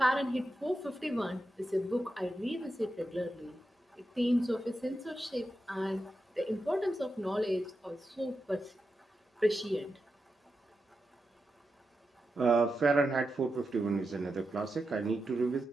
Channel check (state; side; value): normal; both; correlation 0.89